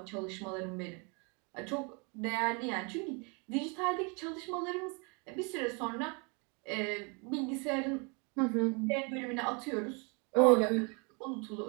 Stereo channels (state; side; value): quieter; left; 33.0 dB